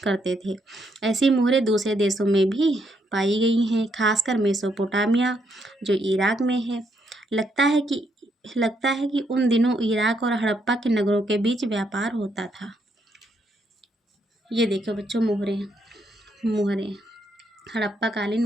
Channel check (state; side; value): normal; both; correlation 0.76